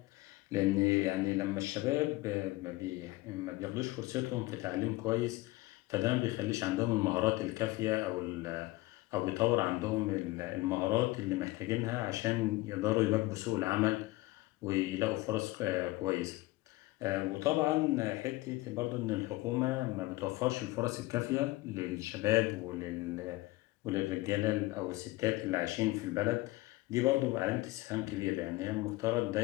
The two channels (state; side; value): quieter; right; 19.9 dB